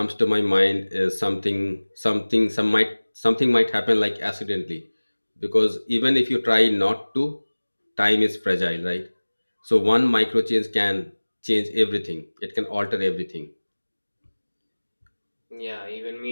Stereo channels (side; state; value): both; inverted; correlation -1.00